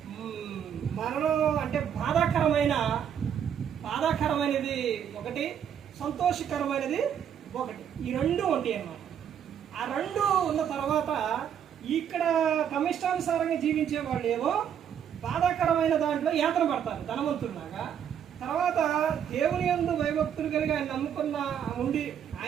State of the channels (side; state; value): left; quieter; 8.8 dB